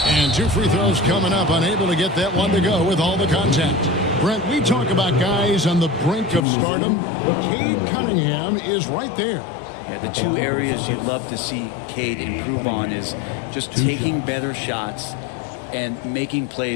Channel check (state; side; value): drops out; right; at 6.5 s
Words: And 2 free throws coming up, unable to get that one to go with all the contact. Brent, we talk about guys on the brink of stardom. Cade Cunningham is right there. Yeah, the 2 areas you'd love to see Cade improve on is just taking better shots and making